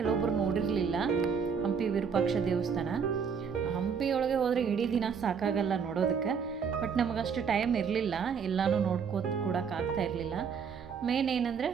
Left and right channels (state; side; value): quieter; left; 6.4 dB